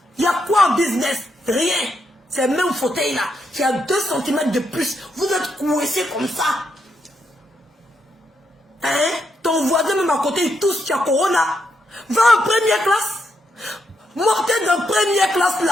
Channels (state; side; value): normal; both; correlation 0.80